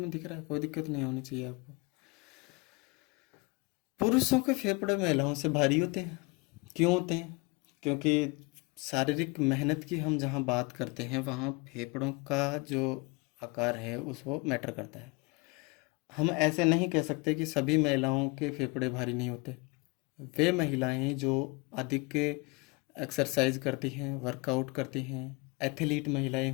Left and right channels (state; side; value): quieter; right; 27.5 dB